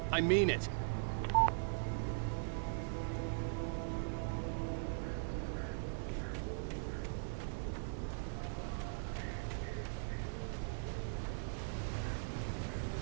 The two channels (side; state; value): left; silent; digital silence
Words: I mean it.